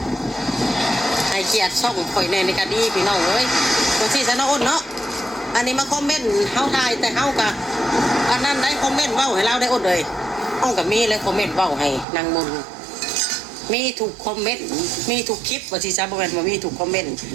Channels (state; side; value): drops out; left; at 12.1 s